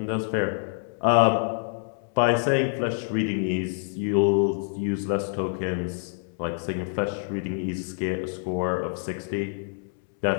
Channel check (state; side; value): silent; right; 61 dB below the other